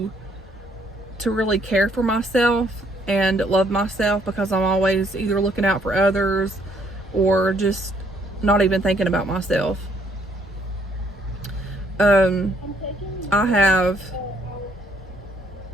really care for myself and love myself, because I'm always either looking out for others or just not even thinking about myself. I have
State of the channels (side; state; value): both; normal; correlation 0.67